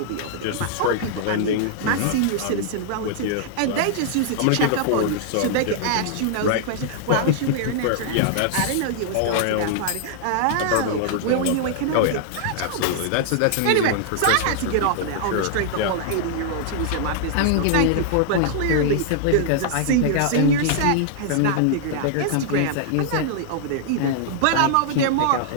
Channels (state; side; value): different; both; correlation -0.01